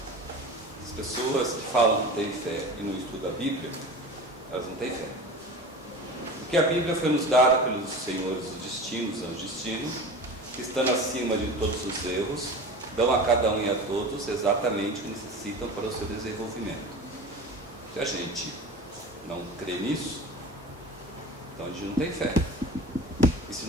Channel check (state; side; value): normal; both; correlation 0.34